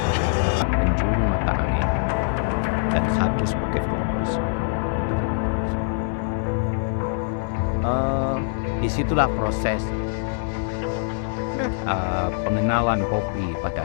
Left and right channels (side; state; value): right; silent; 63 dB below the other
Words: 8 penjuru mata angin dan 1 sebagai fokus. Disitulah proses pengenalan kopi